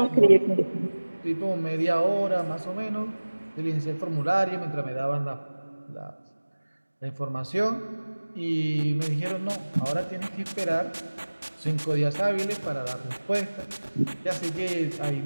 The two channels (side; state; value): both; inverted; correlation -1.00